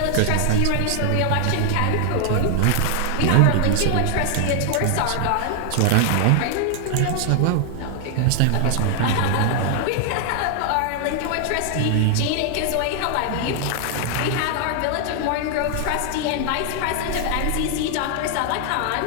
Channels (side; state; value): both; different; correlation 0.00